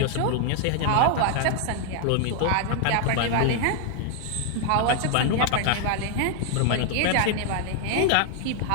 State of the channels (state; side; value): different; both; correlation 0.00